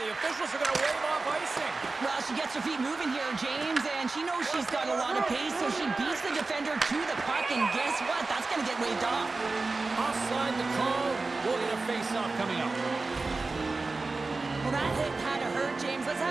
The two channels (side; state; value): left; quieter; 3.6 dB